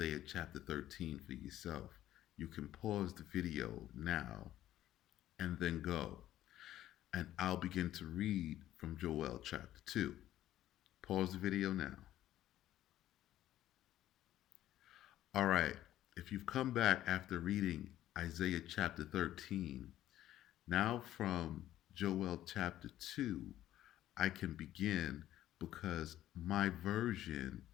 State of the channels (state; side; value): quieter; right; 13.3 dB